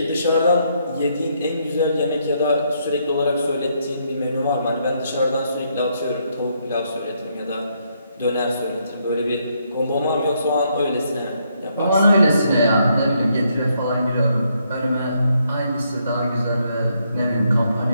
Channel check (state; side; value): inverted; both; correlation -0.74